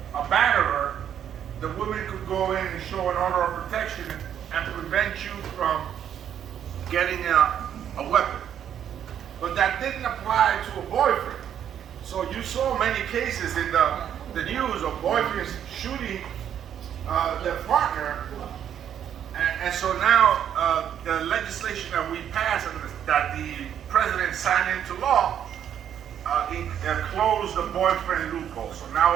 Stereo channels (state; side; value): quieter; left; 9.5 dB